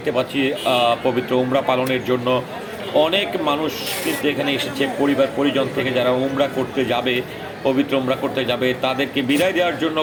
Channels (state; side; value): identical; both; correlation 1.00